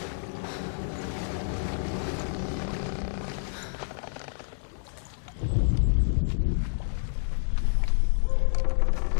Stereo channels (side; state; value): right; silent; digital silence